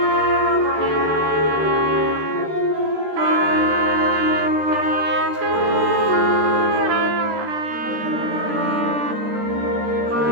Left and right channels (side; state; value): left; late; 13 ms